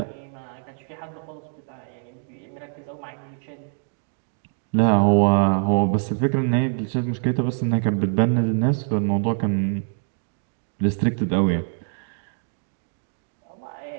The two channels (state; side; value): silent; left; 62 dB below the other